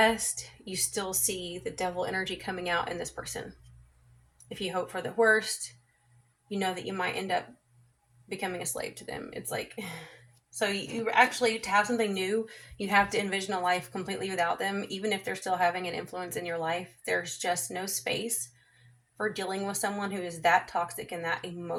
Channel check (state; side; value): identical; both; correlation 1.00